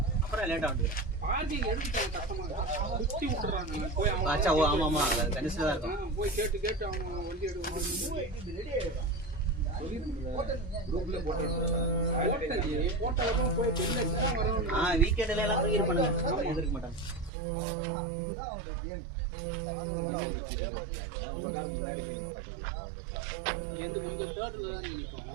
அப்புறம் லேட்டா வந்து ஆச்சா. ஓ ஆமா ஆமா, கணிசா தான் இருக்கும். வீக்கெண்ட்ல எல்லாம் தூக்கி பண்ணுங்க, எதிர்க்க மாட்டாங்க.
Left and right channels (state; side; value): drops out; left; at 17.3 s